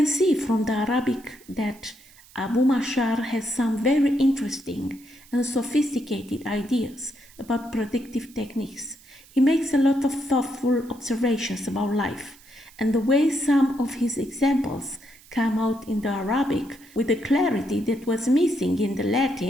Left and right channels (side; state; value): right; noise; hiss, 25 dB below the sound